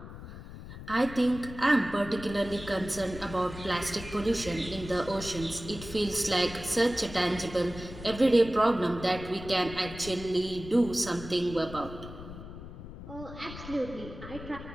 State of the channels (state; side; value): noise; left; rumble, 13 dB below the sound